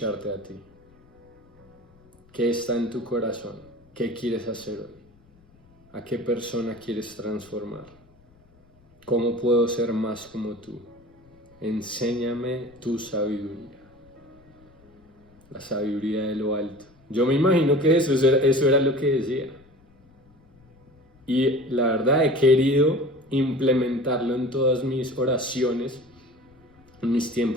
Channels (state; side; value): noise; left; rumble, 30 dB below the sound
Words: a ti. ¿Qué está en tu corazón? ¿Qué quieres hacer hoy? ¿A qué persona quieres transformar? ¿Cómo puedo ser más como tú? Enséñame tu sabiduría. La sabiduría de lo alto. Yo me imagino que eso era lo que decía. Y la verdad he querido implementarlo en todas mis oraciones, en mis